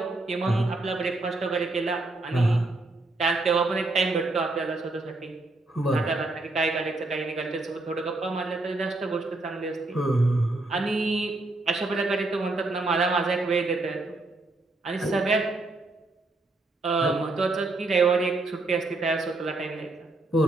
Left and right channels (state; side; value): quieter; left; 3.0 dB